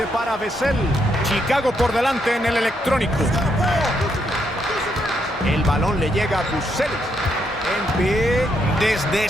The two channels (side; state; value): both; normal; correlation 0.77